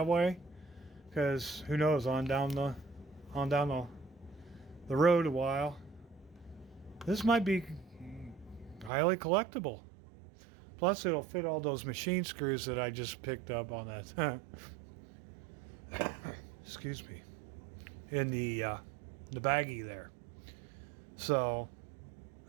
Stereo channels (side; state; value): left; drops out; at 8.9 s